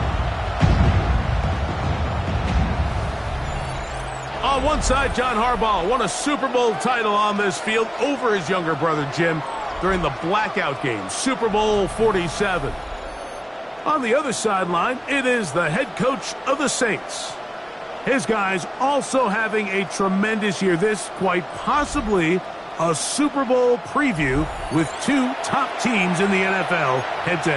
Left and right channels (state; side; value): identical; both; correlation 1.00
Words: On one side, John Harbaugh won a Super Bowl title on this field over his younger brother, Jim, during the blackout game, Super Bowl 47. On the other sideline, it is the head coach of the Saints. His guys also having a tremendous year. This quite possibly a Super Bowl preview with two top teams in the NFL